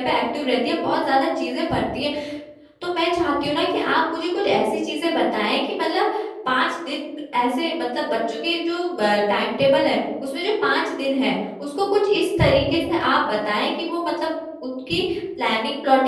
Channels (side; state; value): both; identical; correlation 1.00